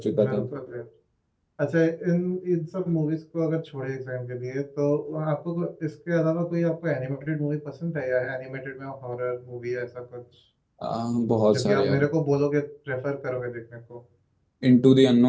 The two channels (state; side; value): identical; both; correlation 1.00